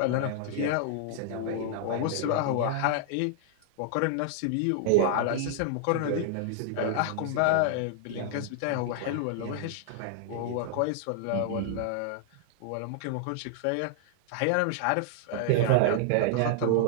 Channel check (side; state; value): both; different; correlation -0.01